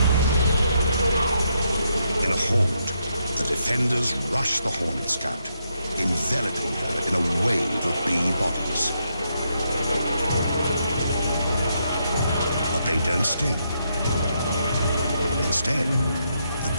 In a horde, the defenders rush the hornet scout, enveloping her in a wave of bee bodies. But they don't sting. Instead, the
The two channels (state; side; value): inverted; both; correlation -0.79